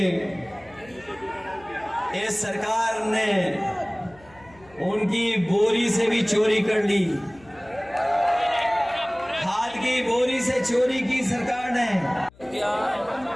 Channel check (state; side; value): noise; left; hum, 26 dB below the sound